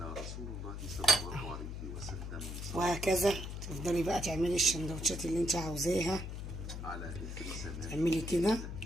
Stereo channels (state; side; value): noise; left; hum, 6 dB below the sound